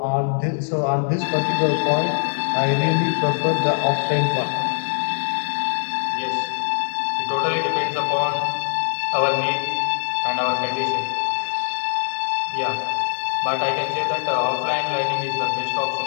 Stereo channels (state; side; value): silent; right; digital silence